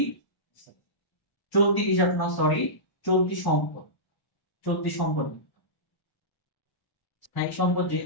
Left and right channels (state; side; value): late; right; 1.0 ms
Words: চলতি হিসাব না, সরি, চলতি সম্পদ, চলতি সম্পদ। স্থায়ী সম্পদ